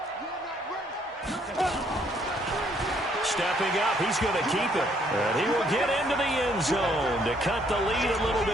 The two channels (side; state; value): both; normal; correlation 0.67